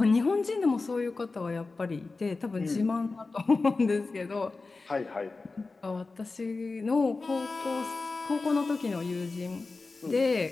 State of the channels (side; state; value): right; quieter; 3.8 dB